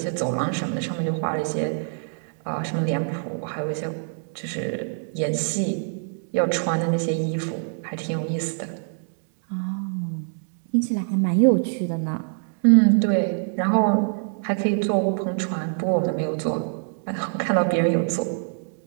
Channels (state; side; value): silent; left; 62 dB below the other